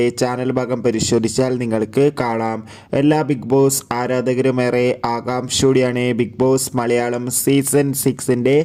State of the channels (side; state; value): both; identical; correlation 1.00